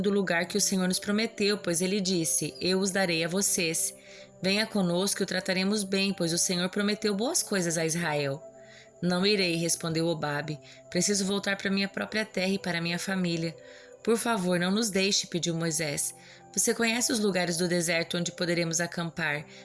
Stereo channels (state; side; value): identical; both; correlation 1.00